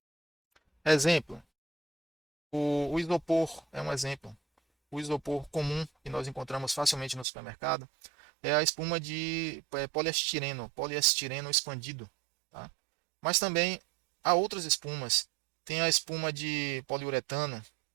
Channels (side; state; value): left; drops out; at 7.2 s